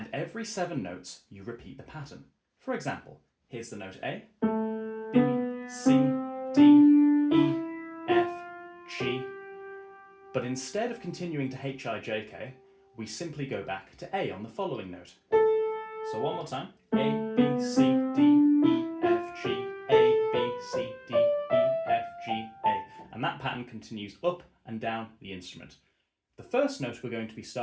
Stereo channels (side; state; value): both; identical; correlation 1.00